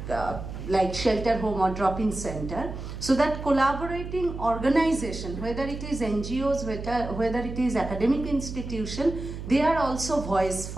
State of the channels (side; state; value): right; noise; hum, 8 dB below the sound